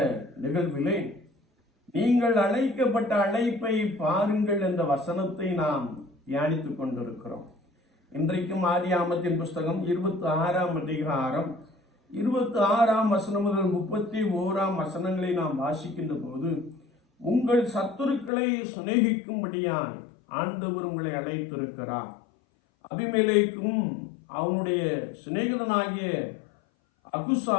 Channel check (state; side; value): drops out; right; at 18.3 s